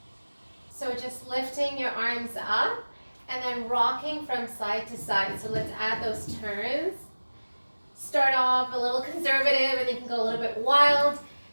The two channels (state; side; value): inverted; both; correlation -1.00